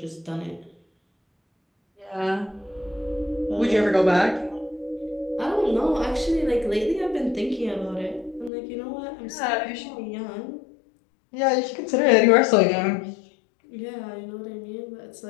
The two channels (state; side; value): drops out; right; at 8.5 s